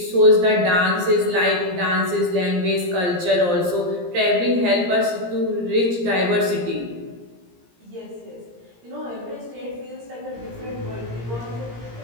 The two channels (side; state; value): left; late; 17 ms